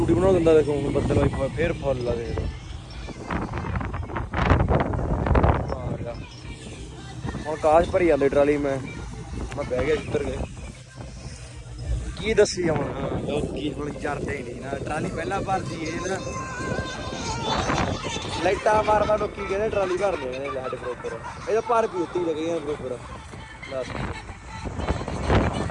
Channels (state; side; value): identical; both; correlation 1.00